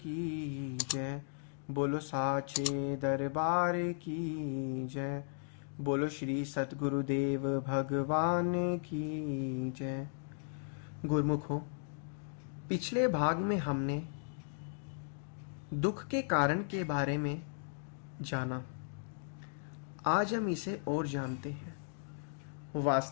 जय। बोलो साचे दरबार की जय। बोलो श्री सतगुरुदेव भगवान की जय। गुरुमुखों, पिछले भाग में हमने दुख के कारण के बारे में जाना। आज हम इसे और जानते हैं।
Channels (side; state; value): right; silent; digital silence